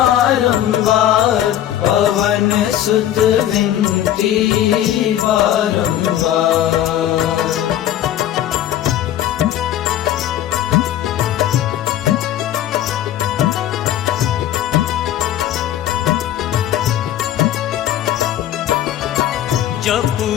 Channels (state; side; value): quieter; right; 11.8 dB